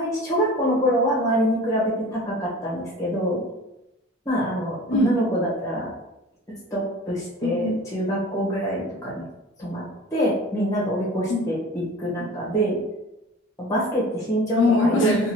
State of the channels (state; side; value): normal; both; correlation 0.41